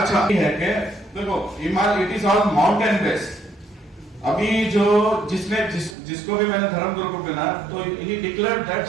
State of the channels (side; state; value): left; drops out; at 6.0 s